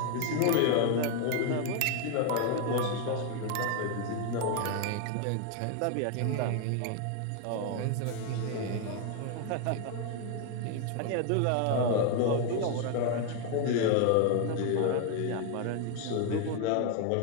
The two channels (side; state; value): both; different; correlation 0.01